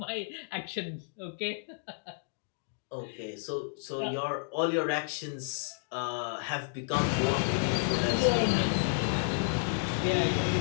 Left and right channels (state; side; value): silent; right; digital silence